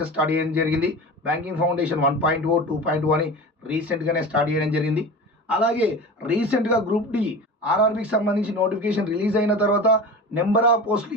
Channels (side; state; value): both; normal; correlation 0.32